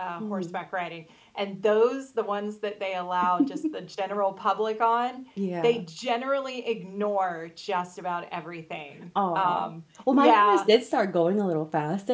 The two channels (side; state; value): both; identical; correlation 1.00